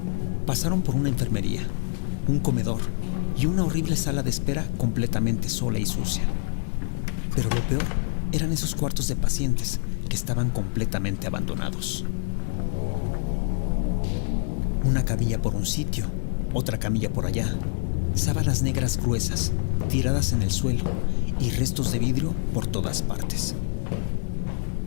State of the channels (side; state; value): right; silent; 61 dB below the other